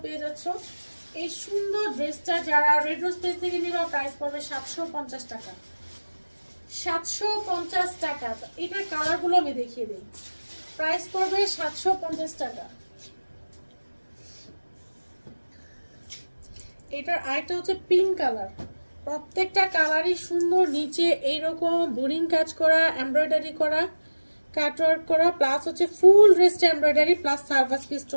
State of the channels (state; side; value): inverted; both; correlation -1.00